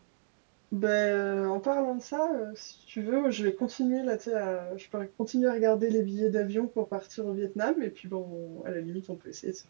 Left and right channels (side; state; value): left; silent; digital silence